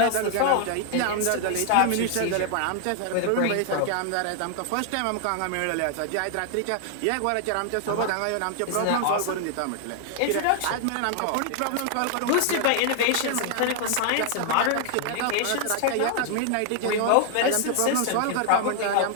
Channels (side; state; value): both; different; correlation 0.00